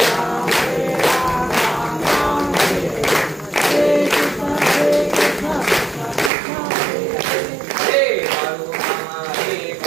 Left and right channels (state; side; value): drops out; left; at 6.3 s